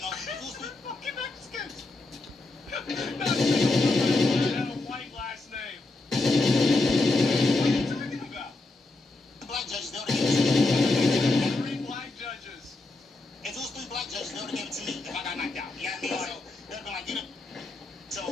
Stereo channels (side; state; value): right; quieter; 3.1 dB